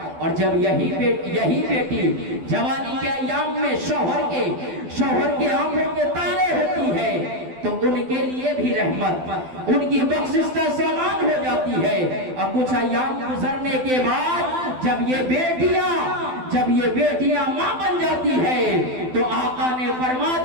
और जब यही बेटी जवानी के अय्याम में शौहर के आंखों के तारे होती है तो उनके लिए भी रहमत, उनकी बख्शिश का सामान हो जाती है। और कुछ अय्याम गुजरने के बाद जब ये बेटियां मां बन जाती है तो आका ने फरमा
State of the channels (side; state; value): left; late; 12 ms